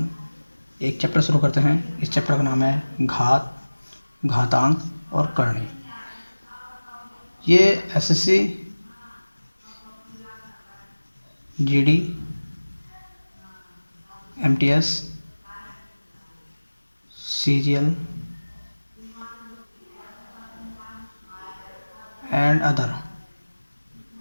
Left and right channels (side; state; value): both; inverted; correlation -1.00